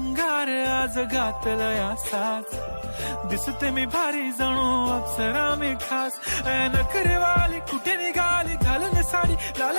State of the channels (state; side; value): inverted; both; correlation -1.00